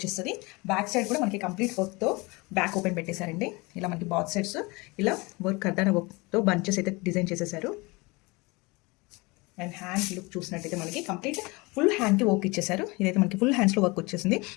బ్యాక్ సైడ్ కూడా మనకి కంప్లీట్ వర్క్తో బ్యాక్ ఓపెన్ పెట్టేశారండి. ఇలా మనకి బాత్ సైడ్స్ ఇలా వర్క్ కర్దానా వర్క్తో బంచెస్ అయితే డిజైన్ చేసేసారు. అండ్ హ్యాండ్ లుక్ చూసినట్టయితే మనకి కంప్లీట్ ఫుల్ హ్యాండ్కి వర్క్ ఇచ్చేసారు. ఇదైతే మనకి ఫుల్ హ్యాండ్స్లో వర్క్ వచ్చేసింది.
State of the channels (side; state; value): right; quieter; 25.2 dB